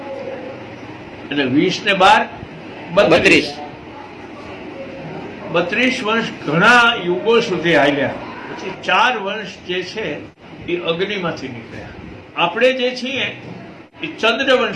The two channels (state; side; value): identical; both; correlation 1.00